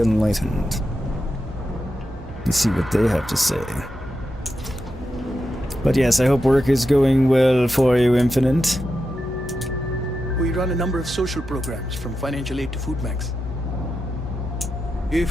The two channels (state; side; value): normal; both; correlation 0.88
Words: Enlightened and see what they have to say. But yes, I hope work is going well for you, Infinite. We run a number of social programs, from financial aid to food banks.